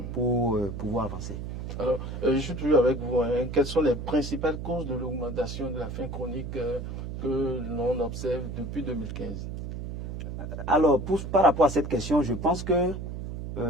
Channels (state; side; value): noise; right; hum, 7 dB below the sound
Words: pour pouvoir avancer. Alors, je suis toujours avec vous. Quelles sont les principales causes de l'augmentation de la faim chronique que l'on observe depuis 2015? Alors, par rapport à cette question, je pense que,